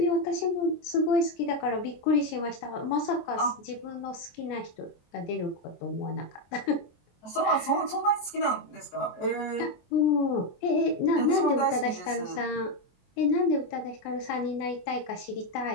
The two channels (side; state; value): right; late; 23 ms